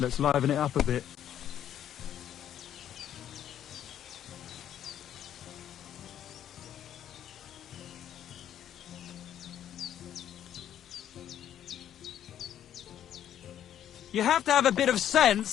liven it up a bit. You have to have a bit of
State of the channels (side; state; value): right; quieter; 10.5 dB